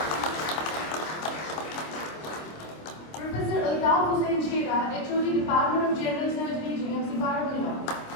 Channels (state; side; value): late; right; 26 ms